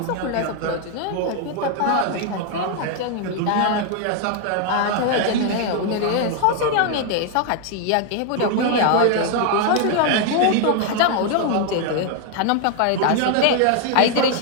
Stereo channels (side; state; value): both; different; correlation 0.00